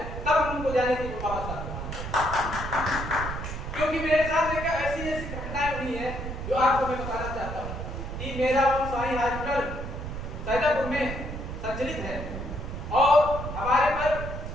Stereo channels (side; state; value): right; noise; rumble, 6 dB below the sound